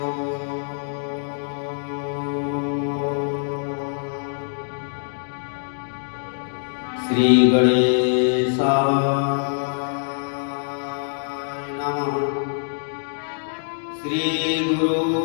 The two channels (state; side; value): silent; right; digital silence